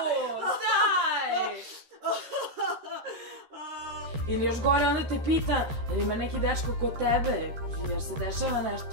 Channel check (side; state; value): left; late; 13 ms